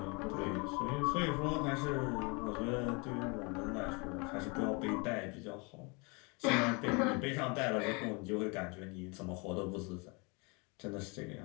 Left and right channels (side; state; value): right; quieter; 30.6 dB